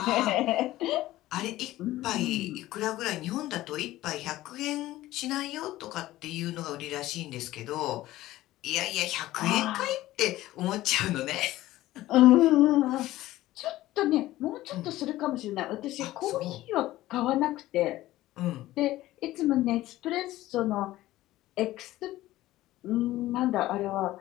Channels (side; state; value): right; quieter; 16.0 dB